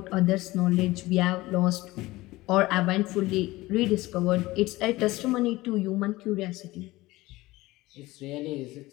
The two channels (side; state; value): right; quieter; 19.2 dB